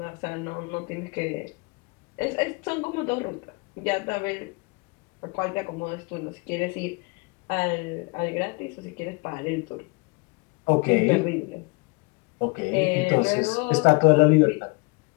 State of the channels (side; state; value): right; quieter; 29.0 dB